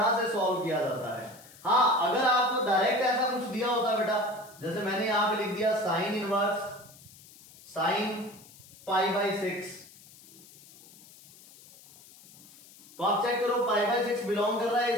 से सॉल्व किया जाता है। हाँ, अगर आपको डायरेक्ट ऐसा कुछ दिया होता बेटा, जैसे मैंने यहां पे लिख दिया साइन इनवर्स साइन π/6, तो आप चेक करो π/6 बिलोंग कर रहा है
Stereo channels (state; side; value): noise; left; hiss, 22 dB below the sound